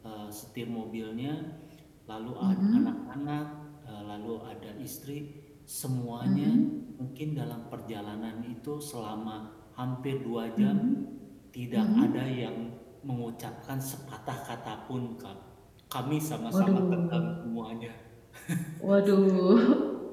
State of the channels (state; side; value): identical; both; correlation 1.00